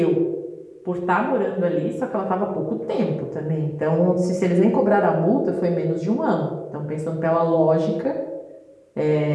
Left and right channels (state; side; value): identical; both; correlation 1.00